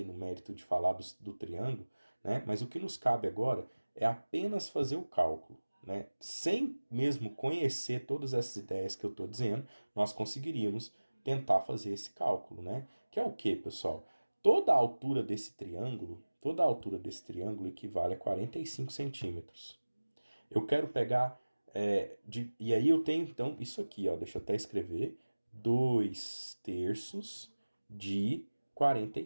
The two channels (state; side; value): inverted; both; correlation -1.00